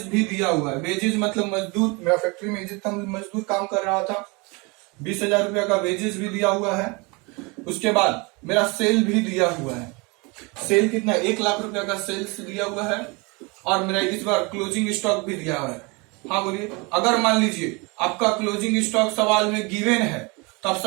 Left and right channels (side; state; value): left; quieter; 28.2 dB